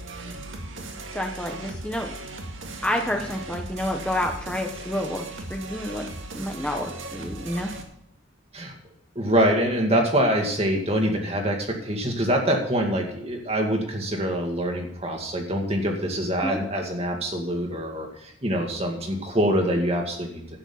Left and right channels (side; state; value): both; normal; correlation 0.43